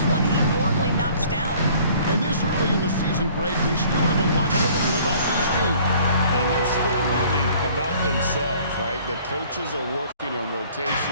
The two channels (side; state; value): both; inverted; correlation -0.54